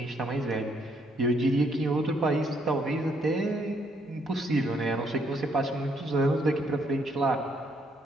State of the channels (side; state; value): both; normal; correlation 0.71